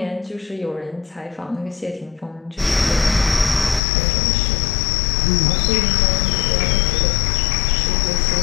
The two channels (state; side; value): drops out; right; at 3.8 s